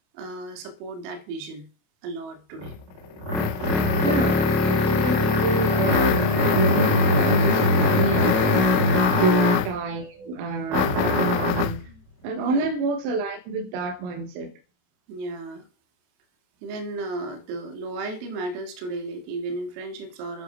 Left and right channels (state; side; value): late; left; 27 ms